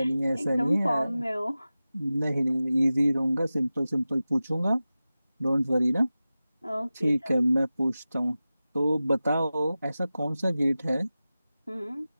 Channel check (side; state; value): both; inverted; correlation -0.95